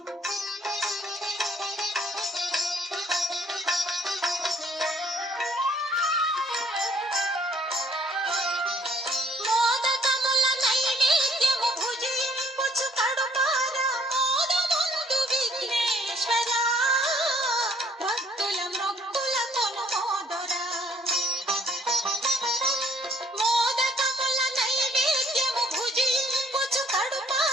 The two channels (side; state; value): both; normal; correlation 0.62